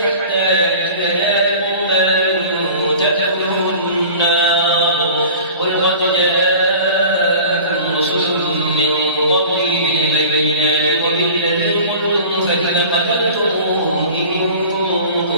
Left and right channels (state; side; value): inverted; both; correlation -0.42